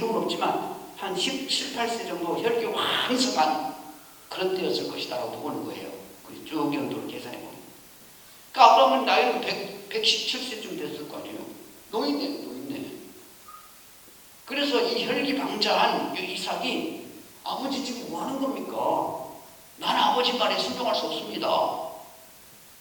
없지만 한 17, 18세 정도 혈기 왕성한 그런 때였을 것이다라고 보는 거예요. 쭉 연도를 계산해 보면. 그러니까 아브라함은 나이는 117세쯤 됐을 거 아니에요. 노인네. 그래서 이 혈기방자한 이삭이, 아버지 지금 뭐 하는 겁니까? 나는 아버지 말에 순종할 수 없습니다.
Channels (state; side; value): identical; both; correlation 1.00